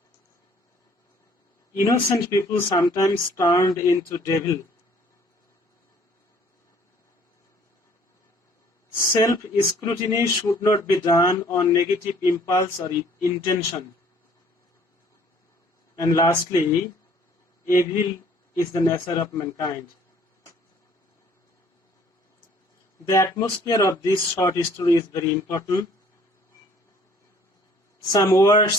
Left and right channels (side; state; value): both; normal; correlation 0.57